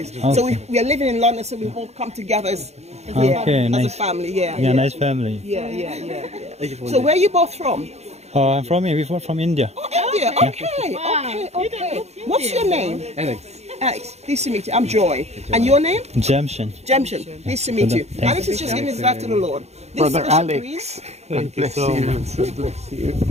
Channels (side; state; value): left; late; 0.31 ms